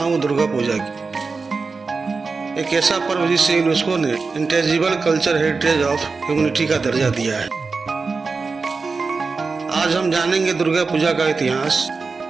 दुर्गा पूजा की। एक ऐसा पर्व जिसे यूनेस्को ने intangible culture heritage of humanity का दर्जा दिया है। आज हम जानेंगे दुर्गा पूजा का इतिहास,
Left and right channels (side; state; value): left; quieter; 4.4 dB